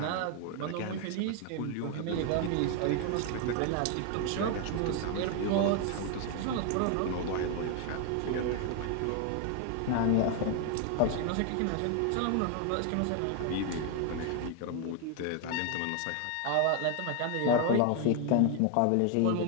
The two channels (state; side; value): different; both; correlation 0.01